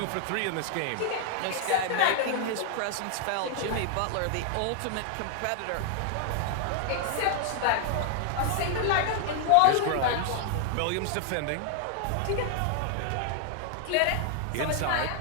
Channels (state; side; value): different; both; correlation 0.00